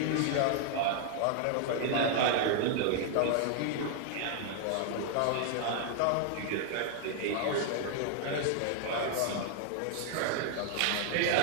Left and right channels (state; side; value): different; both; correlation 0.00